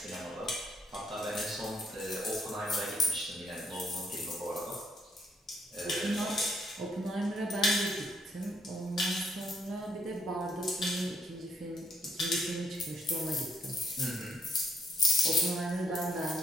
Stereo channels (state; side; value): normal; both; correlation 0.73